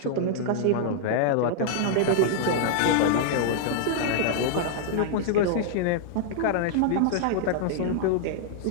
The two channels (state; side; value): different; both; correlation -0.01